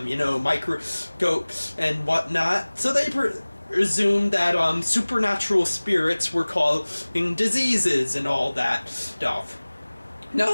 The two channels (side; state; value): both; inverted; correlation -1.00